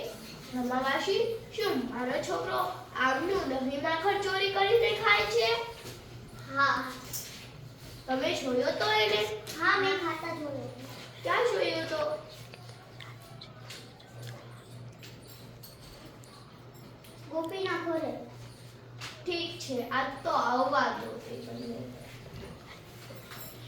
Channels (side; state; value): both; identical; correlation 1.00